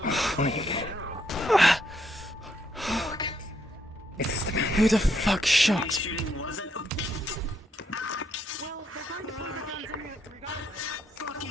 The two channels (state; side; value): normal; both; correlation 0.74